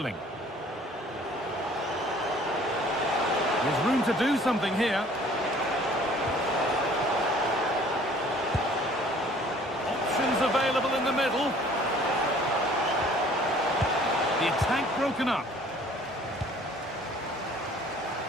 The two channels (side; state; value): both; normal; correlation 0.53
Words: There's room to do something here. Options available in the middle. The attack broken up.